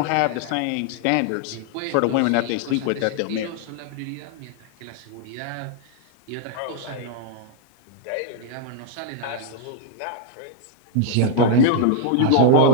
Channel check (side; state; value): both; different; correlation 0.01